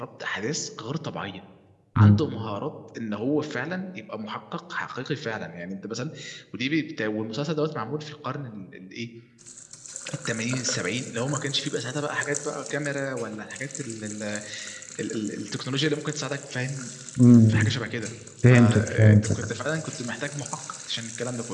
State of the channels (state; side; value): identical; both; correlation 1.00